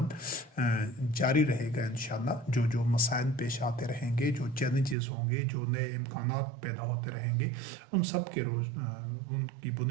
جاری رہے گا انشاءاللہ۔ جو مسائل پیش آتے رہیں گے، جو چیلنجز ہوں گے، جو نئے امکانات پیدا ہوتے رہیں گے، ان سب کے ان کی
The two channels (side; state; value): left; drops out; at 5.0 s